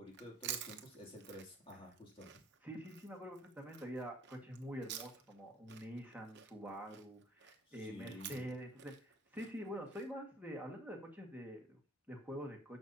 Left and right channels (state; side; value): normal; both; correlation 0.55